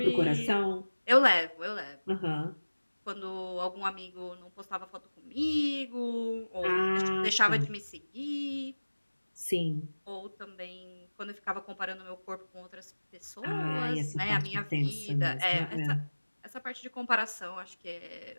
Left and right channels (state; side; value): inverted; both; correlation -1.00